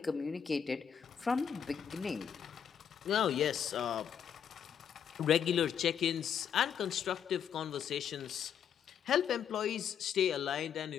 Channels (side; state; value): right; quieter; 8.2 dB